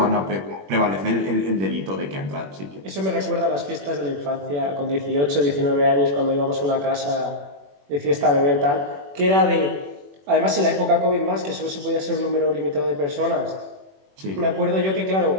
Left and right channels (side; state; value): left; late; 21 ms